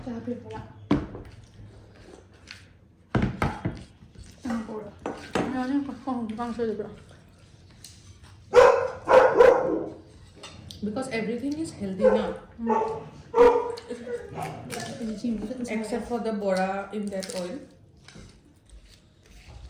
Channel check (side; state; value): both; identical; correlation 1.00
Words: Chả biết là. Ăn Bora. Ya ni không Kangsoi được rồi. Because everything is healthy now. Except for the Bora in that oil.